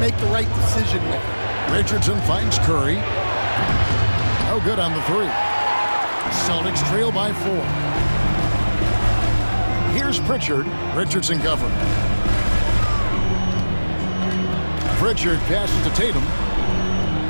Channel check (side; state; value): both; inverted; correlation -1.00